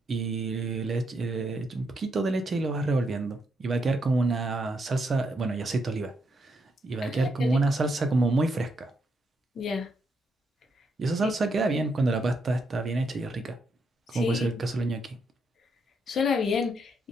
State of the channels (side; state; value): both; normal; correlation 0.78